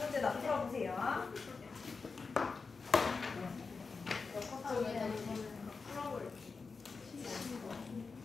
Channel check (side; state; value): right; quieter; 4.6 dB